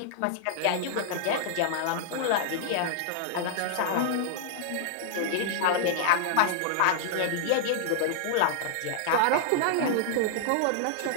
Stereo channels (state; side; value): different; both; correlation -0.01